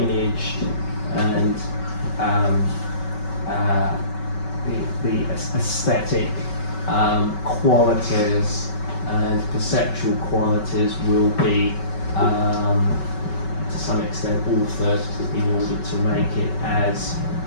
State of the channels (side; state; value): right; late; 5.3 ms